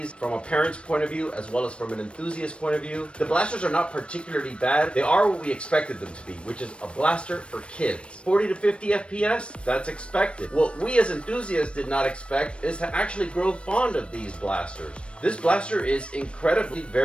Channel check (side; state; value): right; late; 0.059 ms